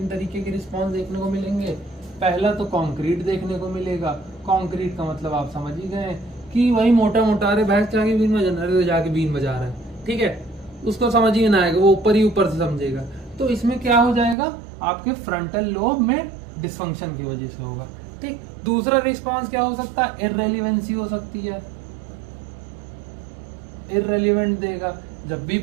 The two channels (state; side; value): drops out; left; at 14.4 s